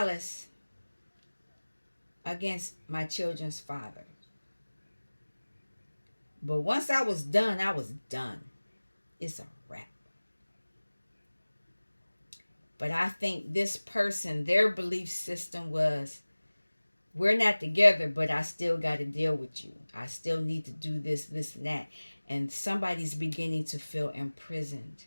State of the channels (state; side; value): inverted; both; correlation -1.00